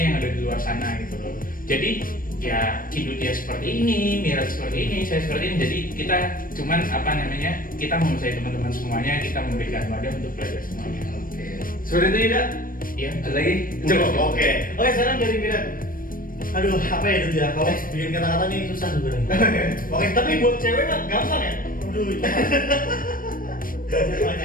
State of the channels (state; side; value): late; right; 0.41 ms